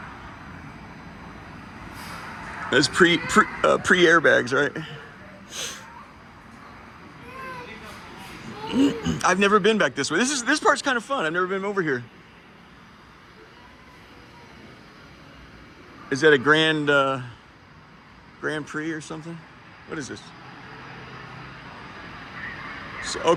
That's pre airbags, right? I've never been back this way. This part's kind of fun. I've never been over here. Is that a Grand Prix or something? What is this? So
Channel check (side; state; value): both; identical; correlation 1.00